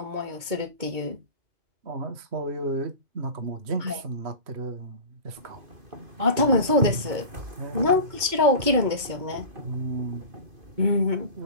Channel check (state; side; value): late; left; 2.2 ms